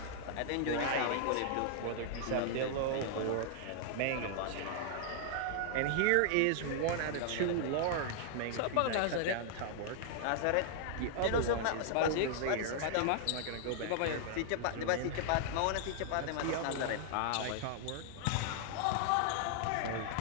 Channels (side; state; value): both; different; correlation -0.01